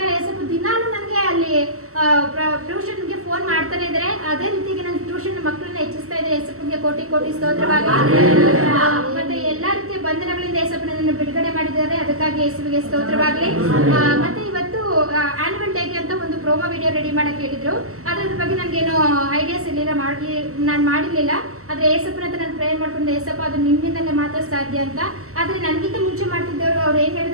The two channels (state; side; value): late; left; 0.63 ms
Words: ಏಸಪ್ಪ ದಿನಾನು ನನಗೆ ಅಲ್ಲಿ ಟ್ಯೂಷನ್ಗೆ ಫೋನ್ ಮಾಡ್ತಾನೆ ಇದ್ದಾರೆ. ಅದೇ ರೀತಿಗೆ ನನ್ನ ಟ್ಯೂಷನ್ ಮಕ್ಕಳನ್ನ ಹೆಚ್ಚಿಸ್ತಾ ಇದ್ದಾರೆ. ಏಸಪ್ಪನಿಗೆ ಕೋಟಿ ಕೋಟಿ ಸ್ತೋತ್ರವಾಗಿ. ಮತ್ತೆ ಎಲ್ಲಾ ರೀತಿಯ ಬಂಧನಗಳಿಂದ ಏಸಪ್ಪ ನನ್ನನ್ನು ಬಿಡುಗಡೆ ಮಾಡಿದ್ದಾರೆ. ಅದಕ್ಕಾಗಿ ಯೇಸುವಿಗೆ ಸ್ತೋತ್ರವಾಗಲಿ. ಮತ್ತೆ ಇವತ್ತು ಆನ್ಯುವಲ್ ಡೇಗೆ ಅಂತ ಒಂದು ಪ್ರೋಮೋ ವಿಡಿಯೋ ರೆಡಿ ಮಾಡಕ್ಕೆ ಹೇಳಿದ್ರು. ಅದ್ರ ಬಗ್ಗೆ ನನಗೇನು ಐಡಿಯಾಸ್ ಇರಲಿಲ್ಲ, ನಾನು ಮಾಡಿರಲಿಲ್ಲ. ಆದರೆ ಏಸಪ್ಪನ ಹತ್ರ ನಾನು ಪ್ರೇಯರ್ ಮಾಡ್ಕೊಂಡು ಏಸಪ್ಪ ಅದು ನಿಮ್ಮಿಂದಲೇ ಮಾತ್ರ ಸಾಧ್ಯ ಅಂತ. ಆದರೆ ನನಗಿಂತ ಮುಂಚೆ ಮಾಡ್ತಿದ್ದವರು ಅವ್ರು ಏನು